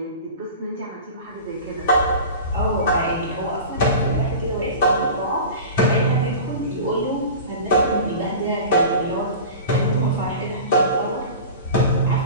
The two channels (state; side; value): inverted; both; correlation -0.34